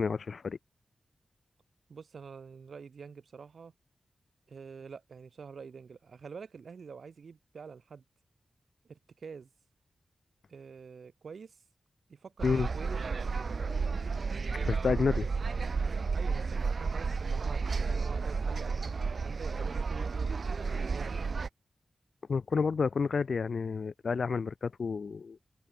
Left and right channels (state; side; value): normal; both; correlation 0.87